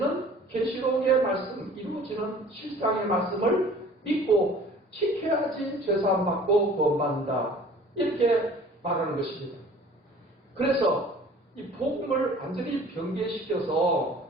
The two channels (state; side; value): normal; both; correlation 0.48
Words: 계시록의 말씀, 이루어지는 실상의 말씀을 믿고 지켜야지 죄사함 받고 구원받는다. 이렇게 말하는 것입니다. 그래서 이 복음을 완전히 변개시켜서